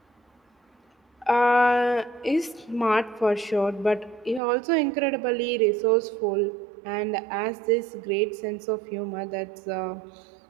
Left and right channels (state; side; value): drops out; left; at 4.4 s